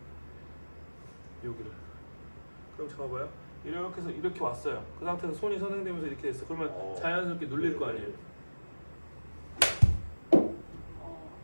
여기를. 그럼 잡아봐요. 이렇게 해서 이렇게 왔어요. 그 상태에서 손이 선행되면서 이렇게 됐어. 그러면 자연스럽게 눌릴 거 아니에요.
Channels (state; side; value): inverted; both; correlation -1.00